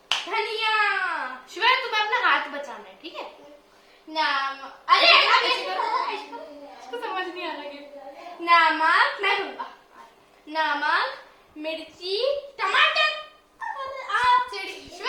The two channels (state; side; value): identical; both; correlation 1.00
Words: धनिया। शिवाय तुम्हें अपना हाथ बचाना है, ठीक है? अरे इसको समझ नहीं आ रहा है। नमक, मैं दूंगा। नमक, मिर्ची, टमाटर। आप